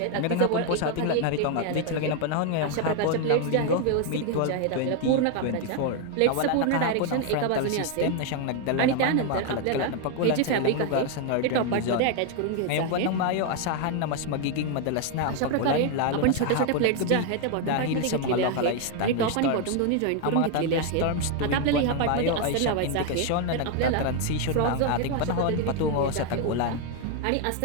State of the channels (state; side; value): different; both; correlation 0.01